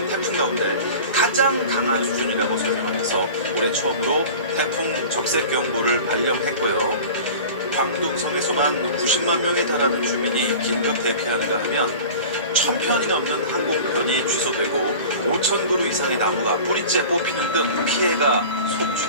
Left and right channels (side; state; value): both; inverted; correlation -0.37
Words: 태풍 가운데 가장 강한 수준이라고 설명하면서 올해 처음으로 태풍 적색경보를 발령했고요. 광둥성에서만 90만 명에 달하는 주민이 긴급 대피하는가 하면 1,000편이 넘는 항공편이 취소되고 5,000그루 이상의 나무가 뿌리째 뽑히는 등 피해가